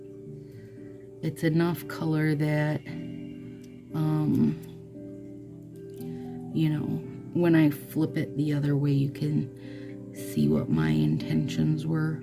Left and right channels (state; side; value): identical; both; correlation 1.00